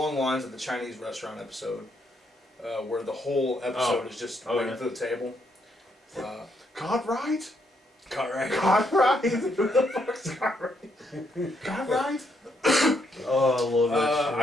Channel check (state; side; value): normal; both; correlation 0.75